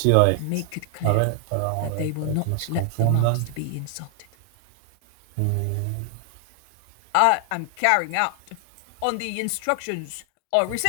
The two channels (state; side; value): different; both; correlation 0.00